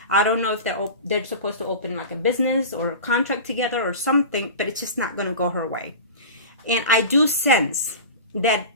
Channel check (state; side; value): inverted; both; correlation -0.32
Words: I don't know if they're supposed to open like a business or a contract together or something, but it's just not going to go her way. And I do sense that